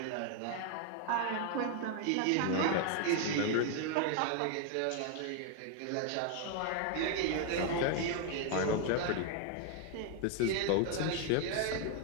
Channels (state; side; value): different; both; correlation 0.01